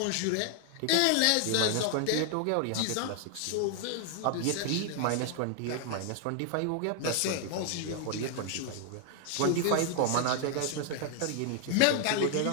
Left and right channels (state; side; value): different; both; correlation 0.00